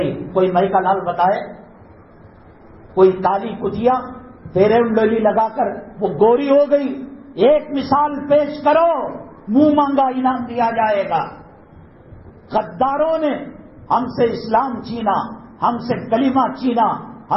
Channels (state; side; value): identical; both; correlation 1.00